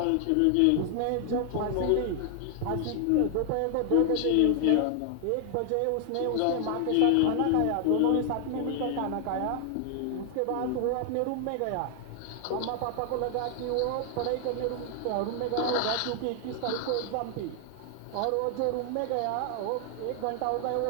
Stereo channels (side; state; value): both; different; correlation 0.00